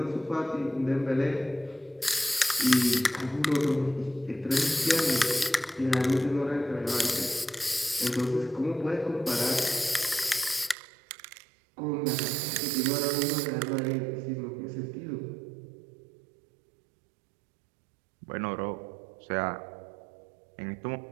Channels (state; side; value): drops out; left; at 10.8 s